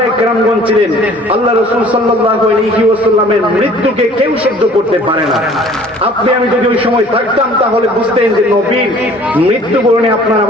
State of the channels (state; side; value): normal; both; correlation 0.52